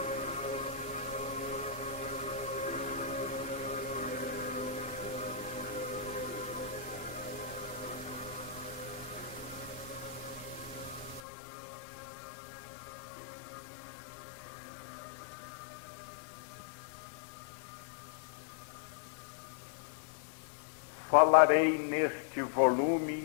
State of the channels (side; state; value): right; drops out; at 11.2 s